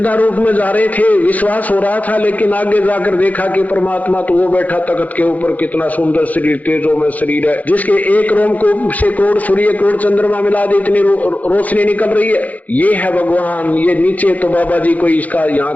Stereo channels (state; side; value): late; right; 0.078 ms